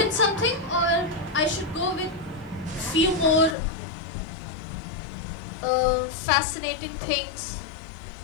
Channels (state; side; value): drops out; right; at 3.6 s